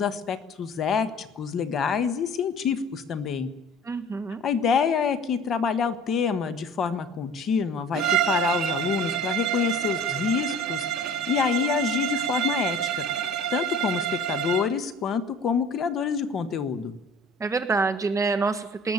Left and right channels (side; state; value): both; normal; correlation 0.45